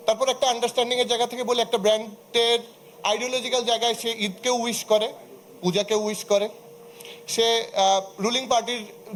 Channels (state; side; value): identical; both; correlation 1.00